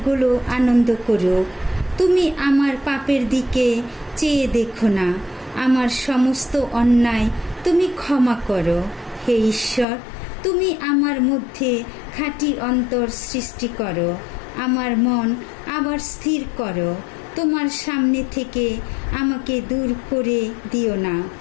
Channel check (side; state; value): right; drops out; at 9.9 s